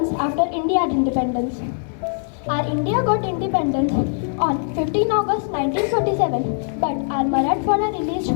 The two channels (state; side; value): silent; right; 65 dB below the other